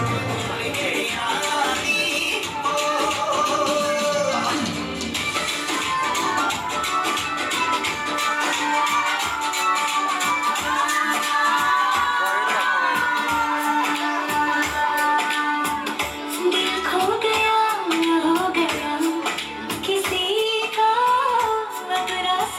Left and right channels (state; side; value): identical; both; correlation 1.00